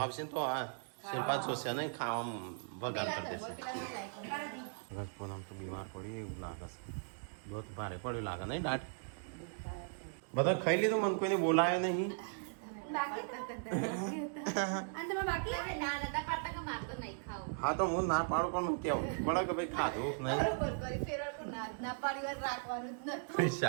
આવશે ને તો આ શિલ્પા જોશે નહીં ખાવામાં વગાડ કરી દેશે. પૂનમ તો બીમાર પડી એવું લાગે છે. બહુ ભારે પડ્યું લાગે નહીં દાટ. બધા ખાઈ લીધું મને કોઈને બોલાયો નહીં. હા તો હું ના પાડું પણ કેવું પડે કે ભાઈ ખાધું નહીં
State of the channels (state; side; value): silent; left; digital silence